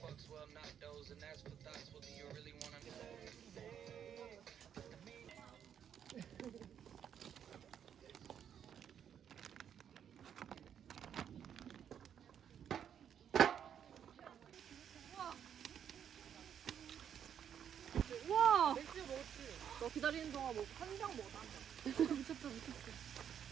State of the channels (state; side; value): quieter; left; 8.8 dB